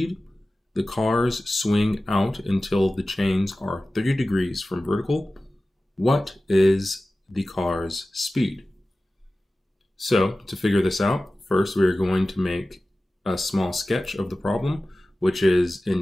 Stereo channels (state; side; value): normal; both; correlation 0.96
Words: The cars swing out until the chains are 30 degrees from vertical. What is the car's speed? So, to figure this out, first we are going to make a small sketch of the problem, which is